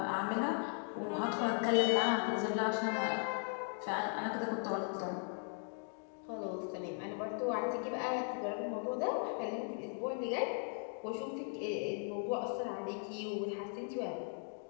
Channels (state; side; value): silent; right; 52 dB below the other